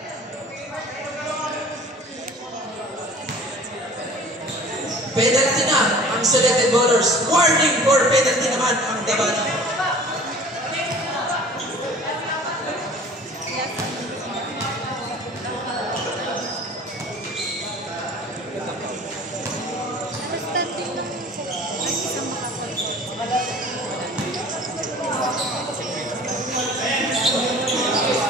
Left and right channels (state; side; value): normal; both; correlation 0.46